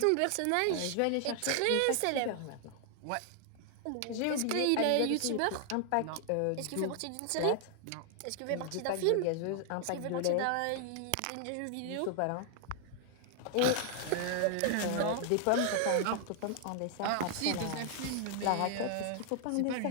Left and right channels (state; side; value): different; both; correlation 0.00